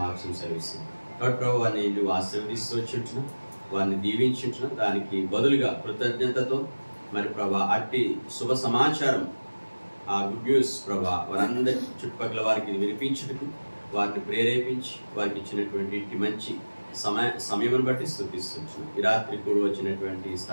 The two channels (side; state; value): both; inverted; correlation -1.00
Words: సెలవిస్తుంది. కాబట్టి ప్రభు వారిని నువ్వు ఆశీర్వదిస్తూ వచ్చింటున్నావు, వారిని దీవించుంటున్నావు. దానికి బదులుగా కృతజ్ఞతతో మరి ప్రభా అట్టి శుభ సమాచారం ఆ గుడ్ న్యూస్ ప్రభా వారందరి చుట్టుపక్కల వారికి వినిపించుటకు వారిని ప్రేరేపించి వారికి ఇచ్చినటువంటి ఇట్టి మంచి సమయం బట్టి స్తుతిస్తున్నాం. ఈ రాత్రి కూడా వచ్చినటువంటి